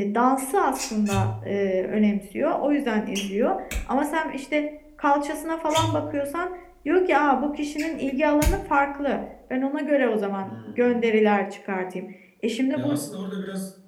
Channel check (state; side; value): identical; both; correlation 1.00